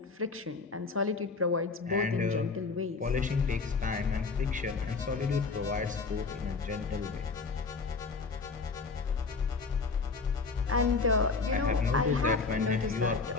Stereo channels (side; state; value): right; quieter; 4.4 dB